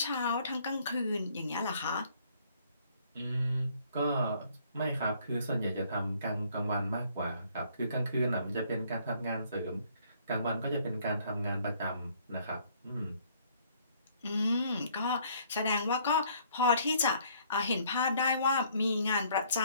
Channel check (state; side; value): inverted; both; correlation -0.62